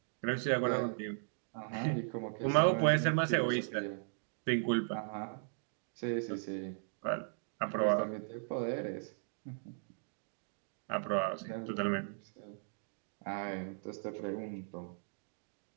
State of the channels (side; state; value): left; silent; digital silence